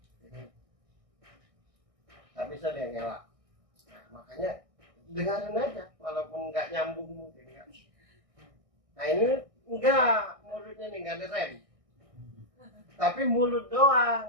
Tak bisa dia ngelak. Nah, makanya dengarin aja walaupun nggak nyambung mungkin kan. Nah ini enggak, mulutnya nih nggak ada rem. Tapi mulut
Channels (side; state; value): left; late; 1.6 ms